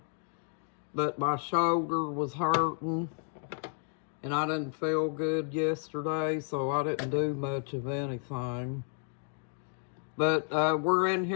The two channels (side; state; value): right; silent; 56 dB below the other